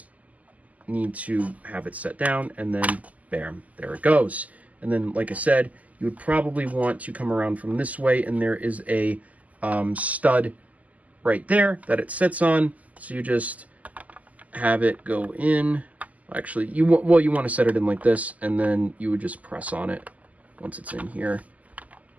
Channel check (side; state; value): left; late; 0.075 ms